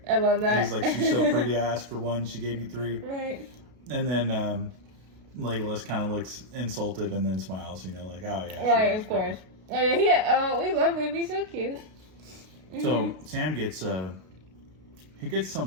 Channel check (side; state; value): left; late; 32 ms